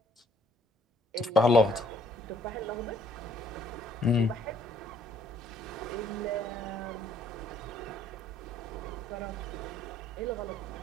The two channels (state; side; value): normal; both; correlation 0.62